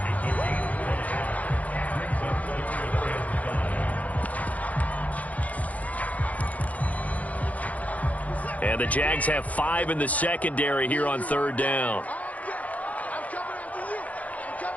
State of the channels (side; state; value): right; late; 0.071 ms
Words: And the Jags have 5 in the secondary here on 3rd down.